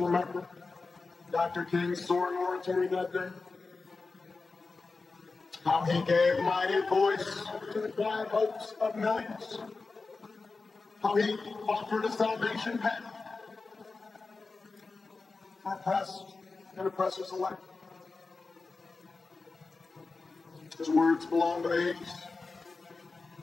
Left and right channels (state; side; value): quieter; right; 4.0 dB